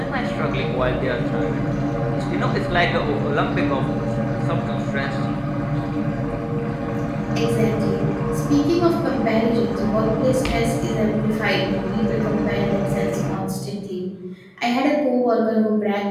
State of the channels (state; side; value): identical; both; correlation 1.00